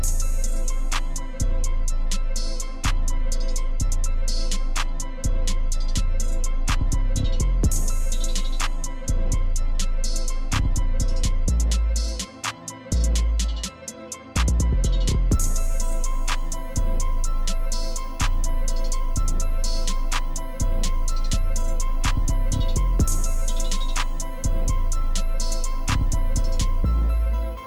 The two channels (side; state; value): both; identical; correlation 1.00